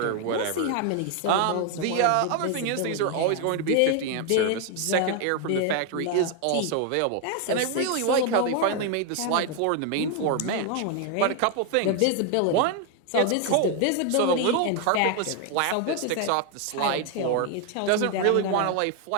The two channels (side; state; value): both; different; correlation 0.01